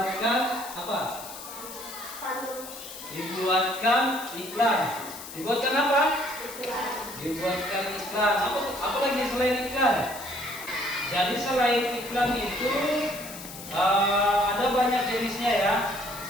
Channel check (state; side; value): noise; left; hiss, 12 dB below the sound